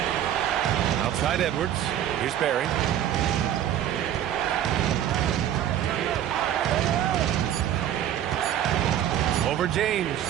Outside Edwards. Here's Barry. Over James.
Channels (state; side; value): quieter; left; 10.9 dB